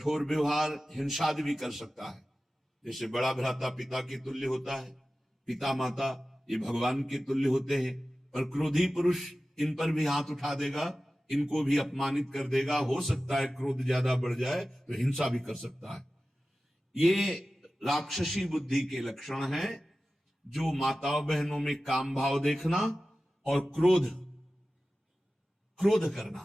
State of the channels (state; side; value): normal; both; correlation 0.95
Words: व्यवहार, हिंसा भी कर सकता है। जैसे बड़ा भ्राता पिता के तुल्य होता है, पिता माता ये भगवान के तुल्य होते हैं, पर क्रोधी पुरुष इन पर भी हाथ उठा देगा, इनको भी अपमानित कर देगा। हो सकता है क्रोध ज्यादा बढ़ जाए तो हिंसा भी कर सकता है। ये राक्षसी बुद्धि के लक्षण हैं, जो माताओं बहनों में काम भाव देखना और क्रोध